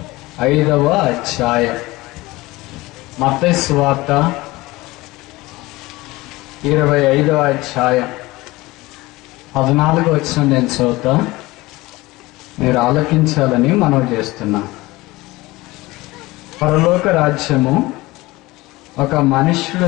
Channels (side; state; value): right; quieter; 20.4 dB